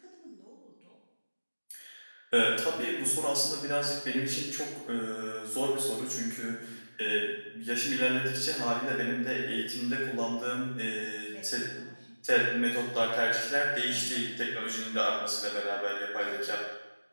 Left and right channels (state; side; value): inverted; both; correlation -1.00